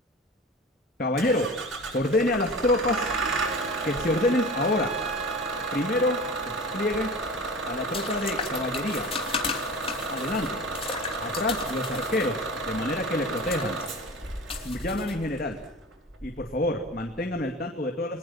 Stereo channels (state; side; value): normal; both; correlation 0.35